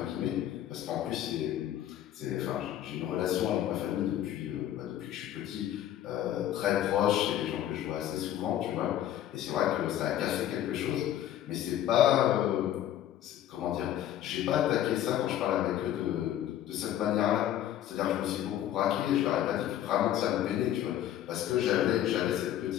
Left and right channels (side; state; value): right; quieter; 11.9 dB